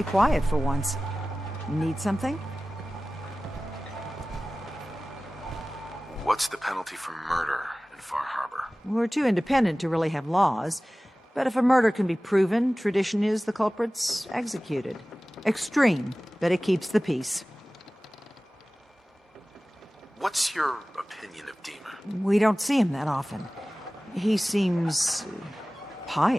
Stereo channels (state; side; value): normal; both; correlation 0.97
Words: quiet for once. Need something? What's the penalty for murder in Far Harbor? We're too independent to really have laws, but if a murder can be proven, tradition is the culprit's executed. Extreme, but it keeps the peace. What's your opinion of Dima? We don't see him that often. He seems